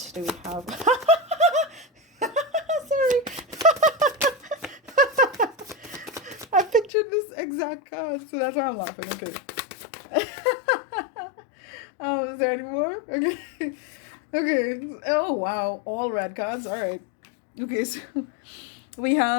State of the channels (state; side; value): drops out; right; at 6.9 s